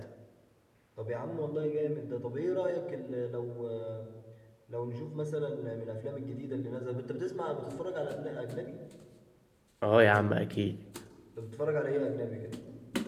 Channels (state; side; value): identical; both; correlation 1.00